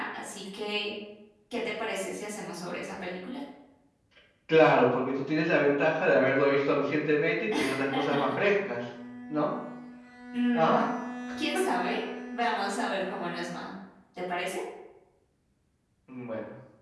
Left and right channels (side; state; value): both; identical; correlation 1.00